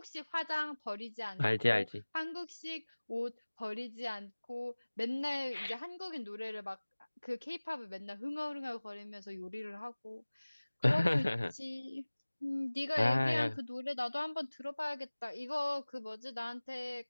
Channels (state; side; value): inverted; both; correlation -1.00